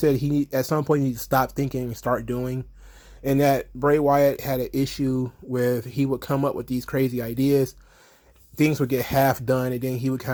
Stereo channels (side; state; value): both; identical; correlation 1.00